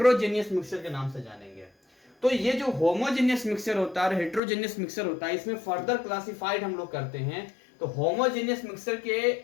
मिक्सचर के नाम से जानेंगे। तो ये जो होमोजेनियस मिक्सचर होता है और हेट्रोजेनियस मिक्सचर होता है, इसमें फर्दर क्लासिफाइड हम लोग करते हैं। तो होमोजेनियस मिक्सचर के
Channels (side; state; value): right; drops out; at 4.4 s